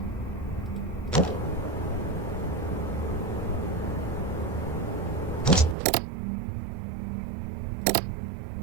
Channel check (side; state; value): left; drops out; at 5.8 s